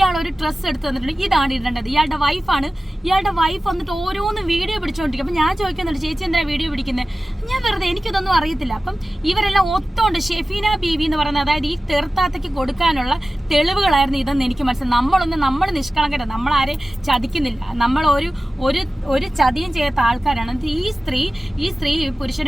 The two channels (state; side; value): normal; both; correlation 0.96